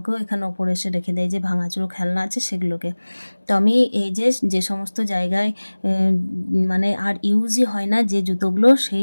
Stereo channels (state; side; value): inverted; both; correlation -1.00